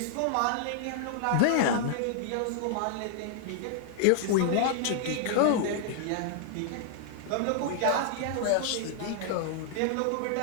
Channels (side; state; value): both; different; correlation -0.01